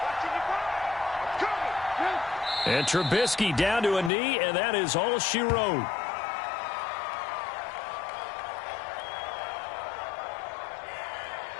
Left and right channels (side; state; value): right; drops out; at 4.1 s